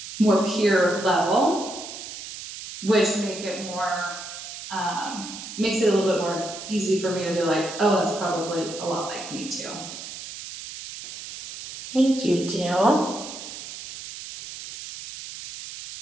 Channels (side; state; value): right; noise; hiss, 11 dB below the sound